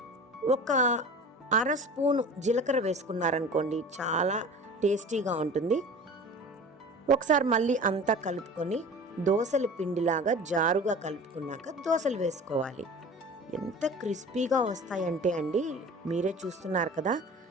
ఒక 1/2 స్పూను జీలకర్ర వేసుకున్నారనుకోండి, చాలా టేస్టీగా ఉంటుంది. ఒకసారి మళ్ళీ అంతా కలుపుకొని దోశల పిండిలాగా జారుగా కలుపుకున్నాక దోశలు వేసుకోవాలి. ఎంత క్రిస్పీగా వస్తాయంటే అండి, మీరే చూస్తున్నారు కదా,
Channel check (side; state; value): both; normal; correlation 0.39